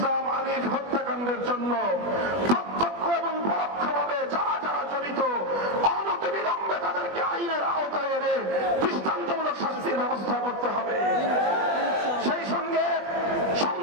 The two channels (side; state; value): left; late; 20 ms